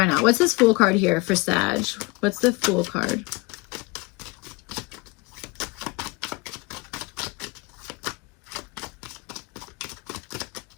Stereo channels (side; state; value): right; quieter; 25.4 dB